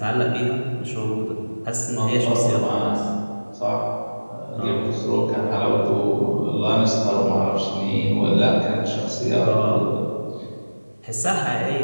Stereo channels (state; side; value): inverted; both; correlation -1.00